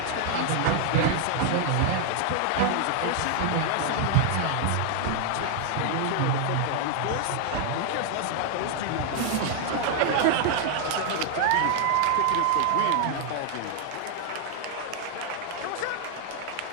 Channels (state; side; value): different; both; correlation 0.00